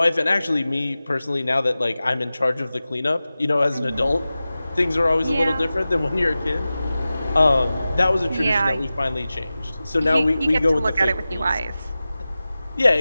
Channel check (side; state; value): both; inverted; correlation -0.96